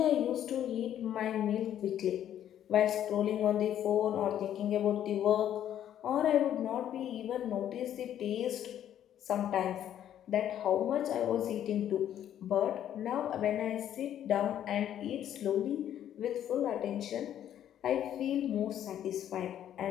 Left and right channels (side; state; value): right; quieter; 10.7 dB